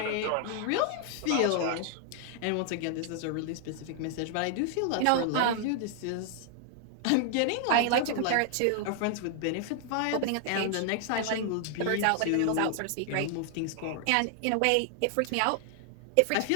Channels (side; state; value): both; different; correlation 0.00